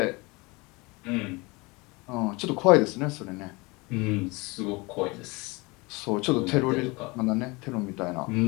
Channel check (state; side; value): quieter; right; 25.5 dB